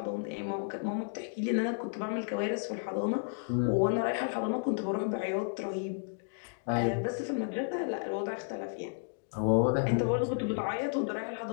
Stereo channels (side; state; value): right; silent; digital silence